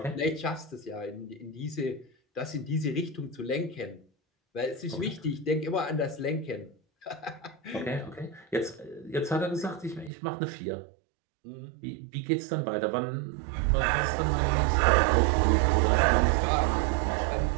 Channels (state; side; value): drops out; left; at 10.1 s